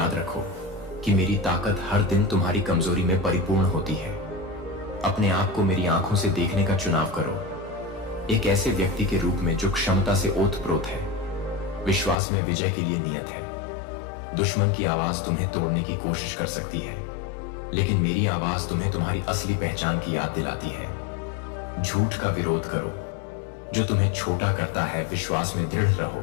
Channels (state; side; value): drops out; right; at 12.2 s